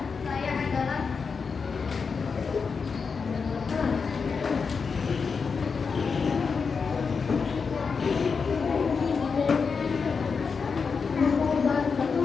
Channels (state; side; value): quieter; right; 5.4 dB